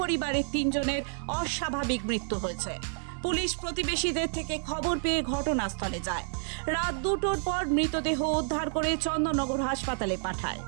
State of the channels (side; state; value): left; silent; 58 dB below the other